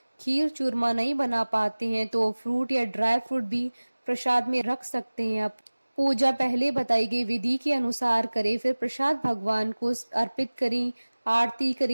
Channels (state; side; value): inverted; both; correlation -1.00